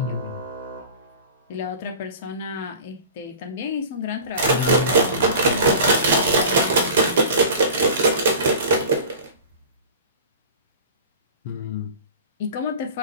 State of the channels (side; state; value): both; inverted; correlation -0.38